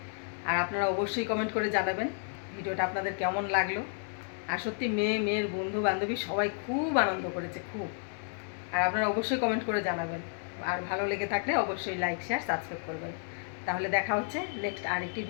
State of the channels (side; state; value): right; silent; 57 dB below the other